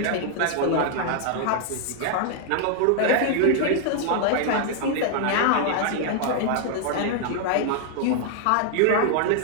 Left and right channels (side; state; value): both; different; correlation 0.00